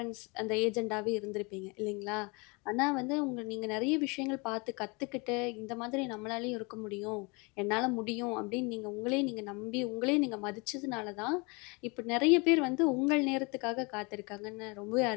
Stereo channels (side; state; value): right; quieter; 28.7 dB